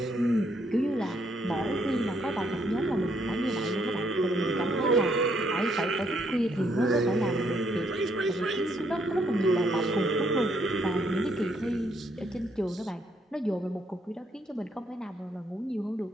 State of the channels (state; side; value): normal; both; correlation 0.71